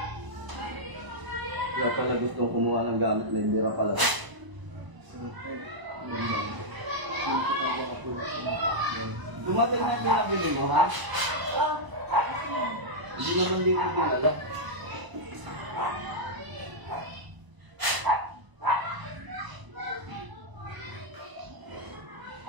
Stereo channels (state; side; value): late; left; 1.0 ms